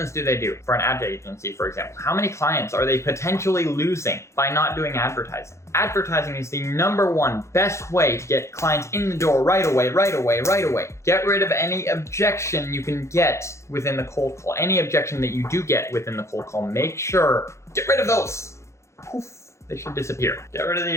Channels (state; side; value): late; right; 0.14 ms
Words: do they do? For an ad agency, for example, how many clients are they potentially losing by not doing advertising? Advertising is the #1 best way to get clients in the door right away. Get rid of any objection you can get within the cold call. Any objection that you do get within the cold call, make sure, get rid of those. Poof, they should disappear. Get rid of the